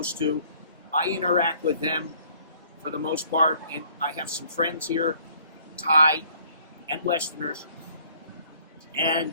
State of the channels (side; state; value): both; inverted; correlation -0.60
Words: to. I interact with them for the most part, and I have some friends here, Thai and Westerners,